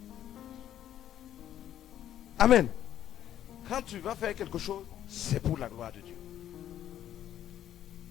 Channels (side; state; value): right; quieter; 11.3 dB